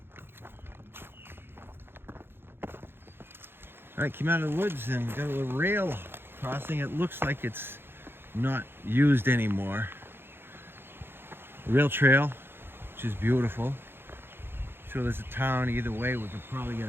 All right, came out of the woods and got a little rail crossing. It looks like it's not used anymore. Rail trail, which is beautiful. So there's a town either way. We could probably get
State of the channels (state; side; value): late; left; 0.11 ms